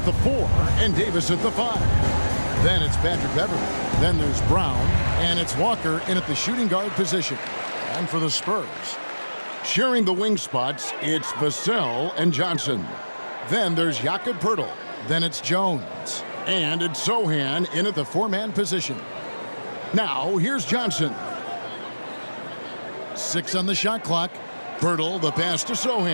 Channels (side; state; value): both; inverted; correlation -1.00